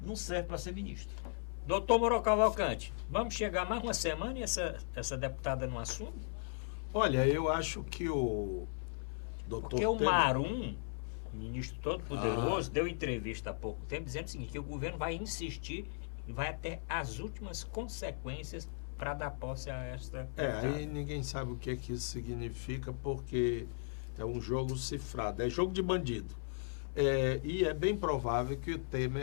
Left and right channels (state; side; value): silent; right; 53 dB below the other